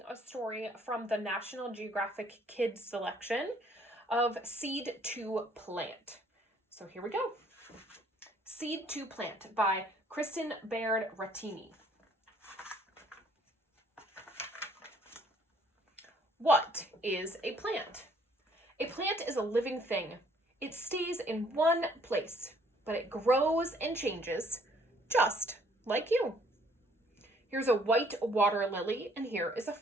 a story from the National Geographic Kids selection of Seed to Plant. So here we go. Seed to Plant by Kristen Baird Rattini. What is a plant? A plant is a living thing. It stays in one place, but it grows and changes, just like you. Here's a white water lily, and here is a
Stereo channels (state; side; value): normal; both; correlation 0.62